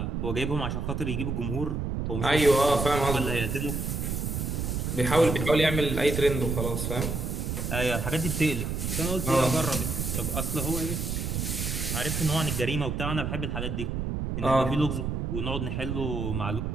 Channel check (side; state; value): right; noise; rumble, 2 dB below the sound